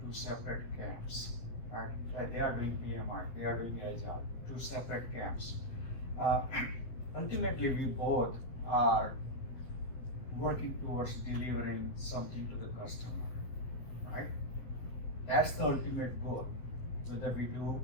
two separate camps, right? They are doing PMI, they are doing Agile, two separate camps. Ultimately, we both are working towards delivering something to the customer, right? That's the ultimate goal, whether we do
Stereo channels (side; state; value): right; late; 8.0 ms